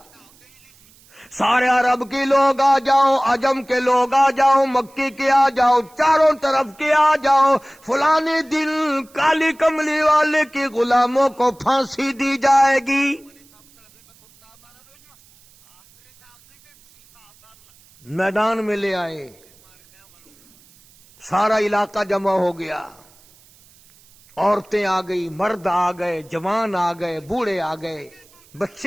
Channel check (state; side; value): noise; right; hiss, 28 dB below the sound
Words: سارے عرب کے لوگ آ جاؤ، عجم کے لوگ آ جاؤ، مکی کے آ جاؤ، چاروں طرف کے آ جاؤ، فلانے دن کالی کملی والے کے غلاموں کو پھانسی دی جائے گی۔ میدان میں لے آئے، سارا علاقہ جمع ہو گیا، عورتیں آ گئی، مرد آ گئے، جوان آ گئے، بوڑھے آ گئے،